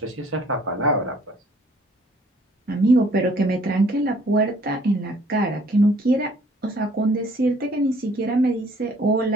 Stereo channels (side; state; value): both; normal; correlation 0.58